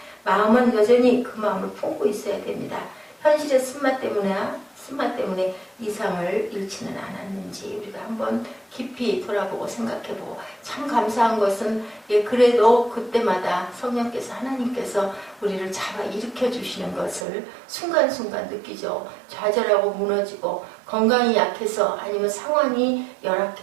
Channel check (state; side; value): drops out; left; at 17.2 s